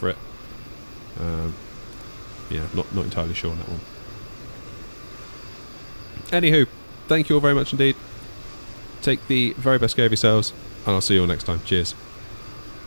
it. Yeah, not entirely sure on that one. Anywho, thank you all very much indeed. Take the very best care of yourselves, and I'll see you all next time. Cheers.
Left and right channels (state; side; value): inverted; both; correlation -1.00